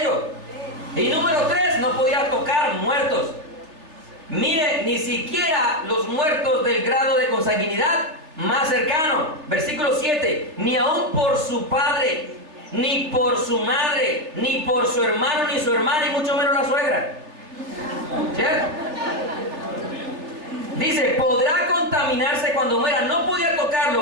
Y número 3, no podía tocar muertos. Mire, ni siquiera los muertos del grado de consanguinidad más cercano. Versículo 7, ni aun por su padre, ni por su madre, ni por su hermano, ni su hermana, y mucho menos la suegra. ¿Cierto? Dice, podrá contaminarse cuando muera. No podía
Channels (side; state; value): left; late; 3.3 ms